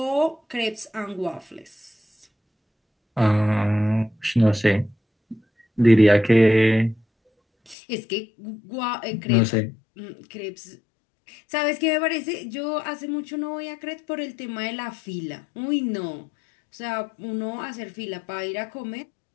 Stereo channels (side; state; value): right; drops out; at 7.8 s